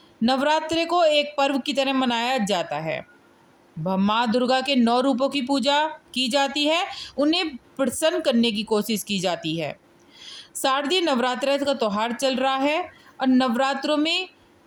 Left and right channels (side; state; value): both; identical; correlation 1.00